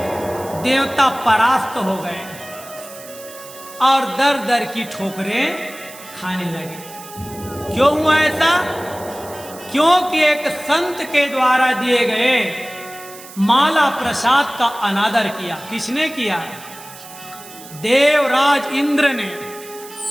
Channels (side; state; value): right; noise; hiss, 17 dB below the sound